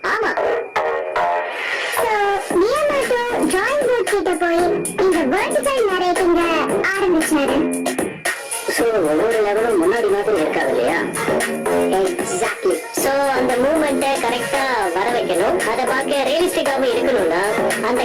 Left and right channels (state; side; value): identical; both; correlation 1.00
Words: ஆமா. சோ மியாமோட்டோ டிராயிங் போர்ட் கிட்ட போய் இந்த வெர்டிகல் நரேட்டிங்க ஆரம்பிச்சாரு. சோ ஒவ்வொரு லெவலும் முன்னாடி மாதிரி இருக்காது இல்லையா? எக்ஸாக்ட்லி. சோ அந்த மூவ்மெண்ட்டை கரெக்டா வர வைக்கணும். அதை பார்க்க ரியலிஸ்டிக்காவும் இருக்கணும்னா அந்த